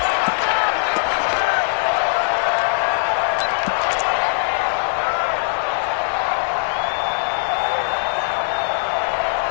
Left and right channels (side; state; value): right; silent; digital silence